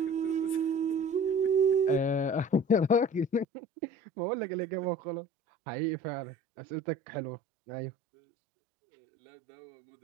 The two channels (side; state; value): left; drops out; at 3.5 s